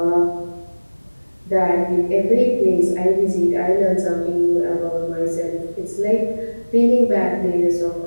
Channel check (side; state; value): both; inverted; correlation -1.00